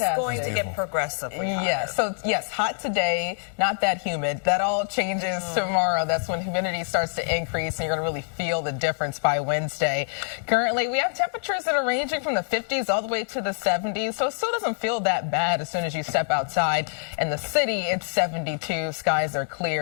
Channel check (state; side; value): silent; right; digital silence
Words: it's going to get progressively hotter. Yes, so yes, hot today, not that humid. That all changes tomorrow. That's when humidity starts to increase and you're going to really feel the difference by Wednesday. Currently, we have temperatures that are ranging from the 50s all the way to the 70s, so it still doesn't feel that bad as soon as you step outside. In the city, it's 72, skies are